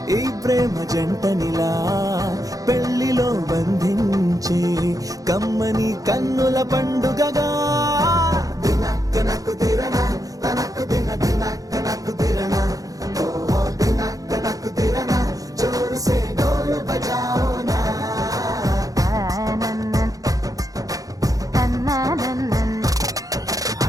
ఈ ప్రేమ జంటనిలా పెళ్లిలో బంధించి కమ్మని కన్నుల పండుగగా. దినక్క నక్కు దిరనా తనకు దిన దినక్క నక్కు దిరనా ఓహో దినక్క నక్కు దిరనా జోరు సే డోలు బజాओ నా.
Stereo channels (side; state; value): left; late; 0.17 ms